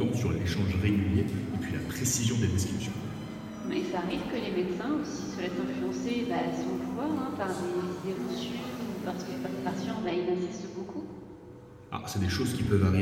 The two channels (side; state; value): both; identical; correlation 1.00